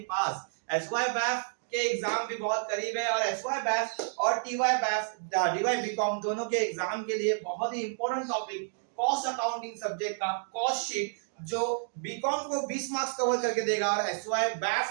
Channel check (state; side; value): silent; left; digital silence